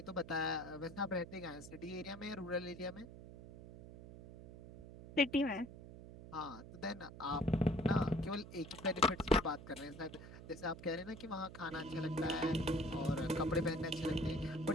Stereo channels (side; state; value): right; noise; hum, 14 dB below the sound